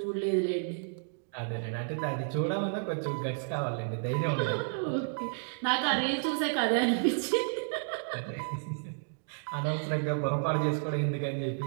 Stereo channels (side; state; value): left; silent; digital silence